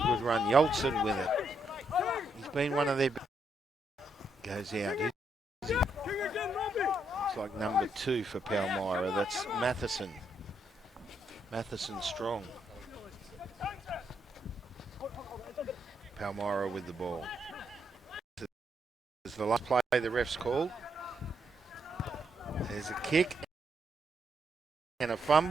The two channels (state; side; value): normal; both; correlation 0.77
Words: good run. Yolson with it. He's been one of their... Goes out. Looks like number 2 for Palmyra. That's Matheson. Matheson strong. Palmyra with the ball. This is the last play the ref's called. There's a kick and a